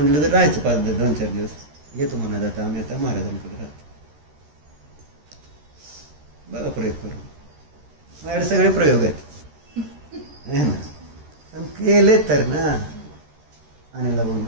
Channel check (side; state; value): left; late; 13 ms